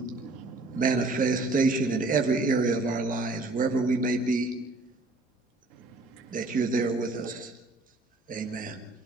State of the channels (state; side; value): quieter; left; 3.1 dB